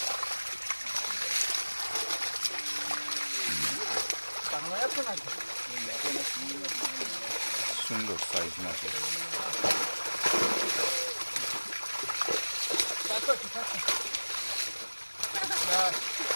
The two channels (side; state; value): both; inverted; correlation -1.00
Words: সুন্দর সাইজ মাছের।